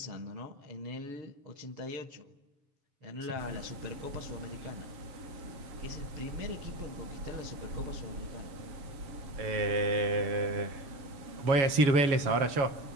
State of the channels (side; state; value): left; late; 7.2 ms